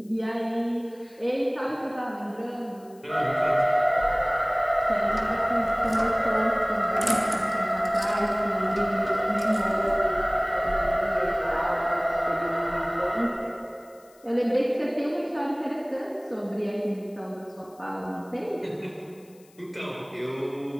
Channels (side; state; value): left; noise; hiss, 29 dB below the sound